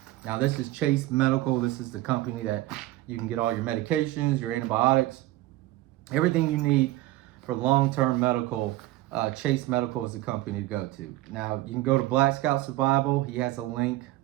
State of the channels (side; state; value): left; quieter; 16.8 dB